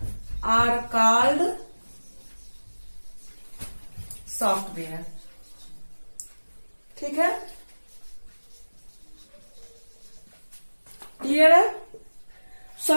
are called software. ठीक है। क्लियर है।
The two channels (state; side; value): inverted; both; correlation -1.00